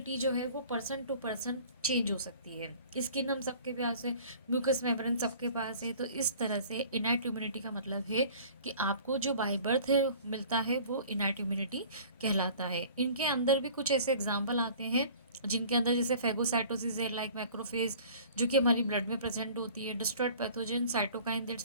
जो है वो पर्सन टू पर्सन चेंज हो सकती है। स्किन हम सबके पास है, म्यूकस मेम्ब्रेन सबके पास है। तो इस तरह से इनैट इम्यूनिटी का मतलब है कि आपको जो बाय बर्थ है मिलता है वो इनैट इम्यूनिटी कहलाता है। इनके अंदर भी कुछ ऐसे एग्जाम्पल आते हैं जिनके अंदर जैसे फेगोसाइटोसिस है, लाइक मैक्रोफेज, जो कि हमारी ब्लड में प्रेजेंट होती है, destroyed pathogen, cytokine that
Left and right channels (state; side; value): inverted; both; correlation -0.48